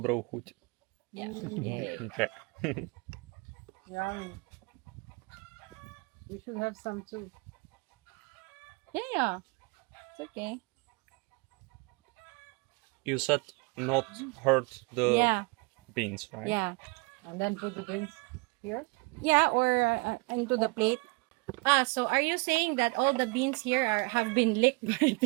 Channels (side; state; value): left; quieter; 28.7 dB